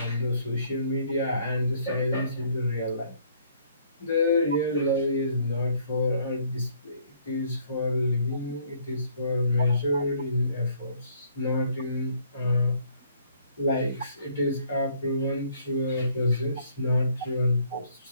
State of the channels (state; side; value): inverted; both; correlation -0.64